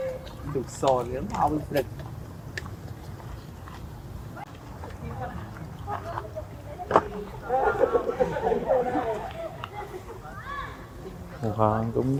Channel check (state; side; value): identical; both; correlation 1.00